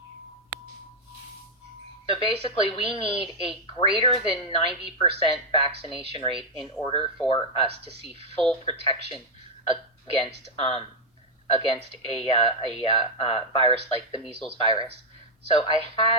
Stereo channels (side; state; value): both; normal; correlation 0.00